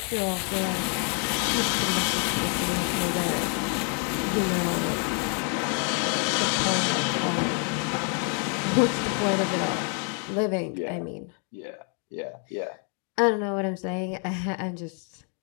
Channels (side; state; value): right; quieter; 39.4 dB